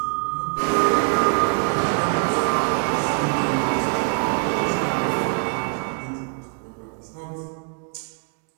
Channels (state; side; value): quieter; left; 38.1 dB